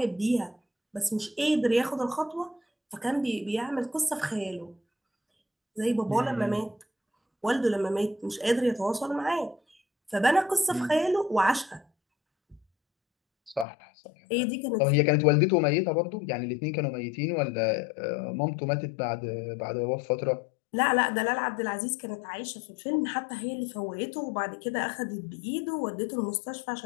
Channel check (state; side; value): drops out; right; at 13.7 s